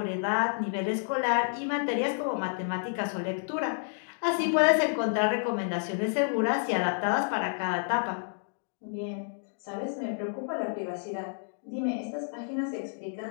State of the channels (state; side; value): silent; right; digital silence